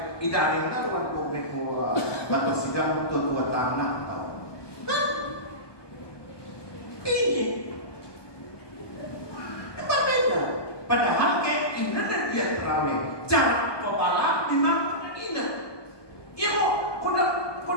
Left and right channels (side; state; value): right; late; 1.2 ms